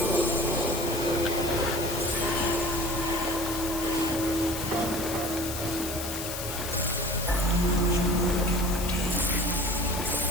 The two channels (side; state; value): left; noise; hiss, 6 dB below the sound